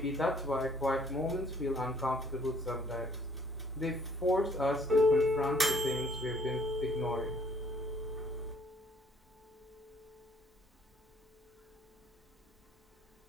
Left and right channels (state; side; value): normal; both; correlation 0.60